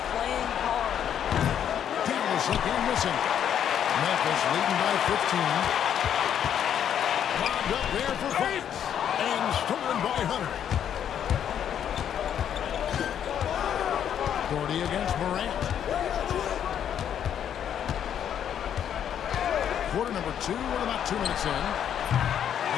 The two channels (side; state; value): right; quieter; 9.3 dB